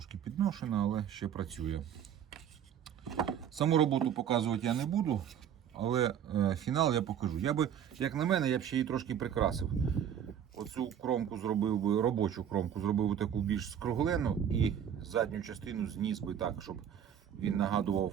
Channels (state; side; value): quieter; left; 9.1 dB